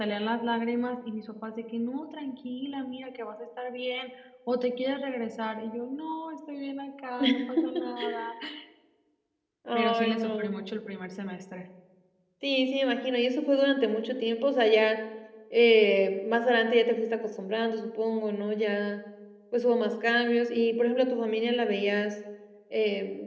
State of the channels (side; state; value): both; identical; correlation 1.00